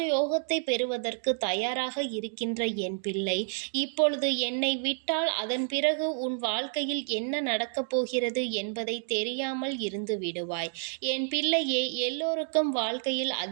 பெறுவதற்கு தயாராக இருக்கின்ற என் பிள்ளை, இப்பொழுது என்னை விட்டால் அதன் பிறகு உன் வாழ்க்கையில் என்ன நடக்கப் போகிறது என்பதை தெரியாமல் இருந்து விடுவாய். என் பிள்ளையே, எல்லோருக்கும் வாழ்க்கையில்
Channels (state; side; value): silent; left; 58 dB below the other